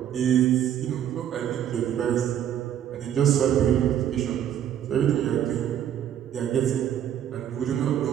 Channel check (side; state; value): left; quieter; 10.2 dB